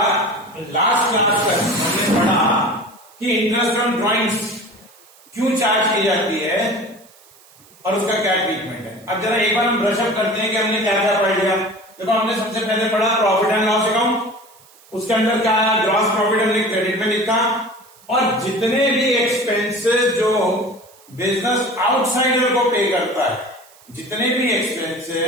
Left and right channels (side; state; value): right; noise; hiss, 27 dB below the sound